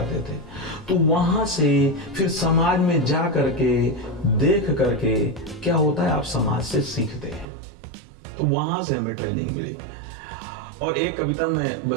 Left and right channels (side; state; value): left; drops out; at 7.5 s